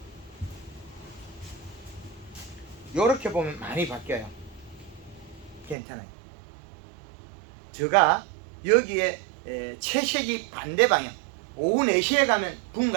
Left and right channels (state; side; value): drops out; left; at 5.8 s